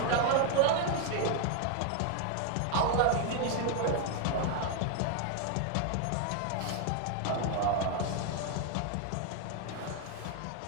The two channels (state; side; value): different; both; correlation 0.01